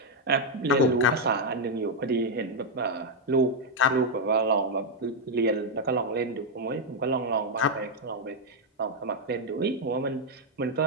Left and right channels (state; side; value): normal; both; correlation -0.01